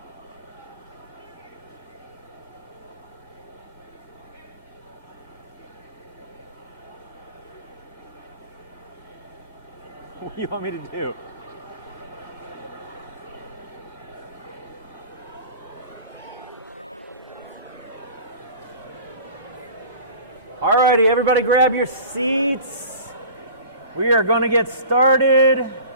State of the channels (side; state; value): both; inverted; correlation -0.41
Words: What do you want me to do? Alrighty, everybody grab your seats. We are going to get started.